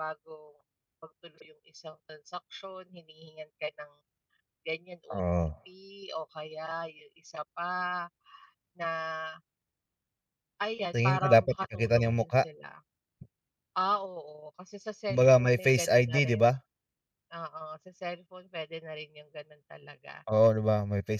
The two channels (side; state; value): both; identical; correlation 1.00